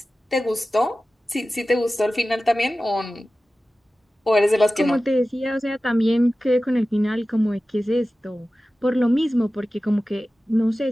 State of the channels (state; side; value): normal; both; correlation 0.95